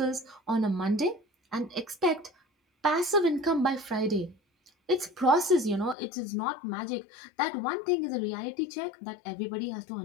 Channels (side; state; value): right; drops out; at 6.0 s